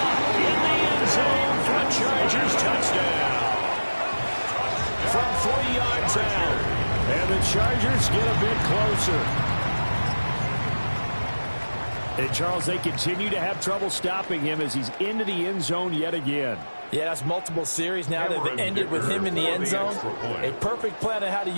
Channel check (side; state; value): both; inverted; correlation -1.00